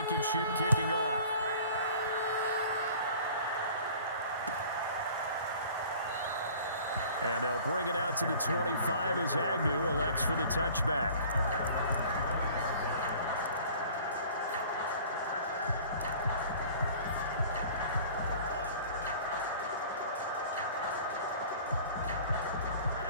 kicking off. And they'll bring it out to the 25 as Agnew elects for the touchback.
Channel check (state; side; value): inverted; both; correlation -0.47